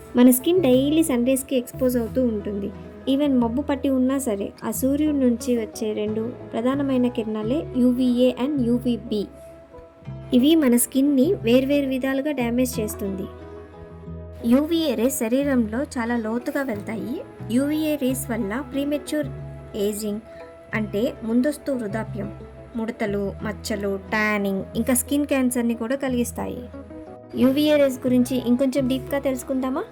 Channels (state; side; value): identical; both; correlation 1.00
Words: మన స్కిన్ డైలీ సన్ రేస్కి ఎక్స్పోజ్ అవుతూ ఉంటుంది. ఈవెన్ మబ్బు పట్టి ఉన్నా సరే ఆ సూర్యుడి నుంచి వచ్చే రెండు ప్రధానమైన కిరణాలే యూవీఏ అండ్ యూవీబీ. ఇవి మన స్కిన్ని వేర్వేరు విధాలుగా డ్యామేజ్ చేస్తుంది. యూవీఏ రేస్ శరీరంలో చాలా లోతుగా వెళ్తాయి. యూవీఏ రేస్ వల్ల ప్రీమెచ్యూర్ ఏజింగ్ అంటే ముందస్తు వృద్ధాప్యం, ముడతలు, మచ్చలు, ట్యానింగ్, ఇంకా స్కిన్ క్యాన్సర్ని కూడా కలిగిస్తాయి. యూవీఏ రేస్ గురించి ఇంకొంచెం డీప్గా తెలుసుకుందామా?